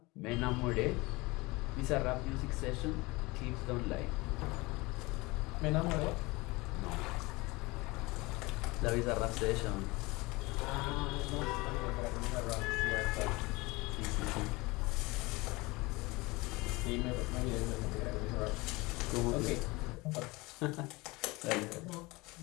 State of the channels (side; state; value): right; quieter; 23.4 dB